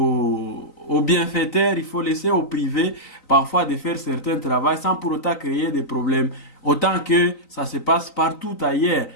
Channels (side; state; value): right; late; 3.9 ms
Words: bienfaiteurs, il faut laisser au privé parfois de faire certains travaux sans pour autant créer des problèmes. Autant que ça se passe partout ailleurs.